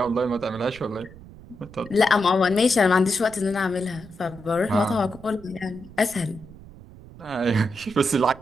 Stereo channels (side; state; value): right; noise; rumble, 19 dB below the sound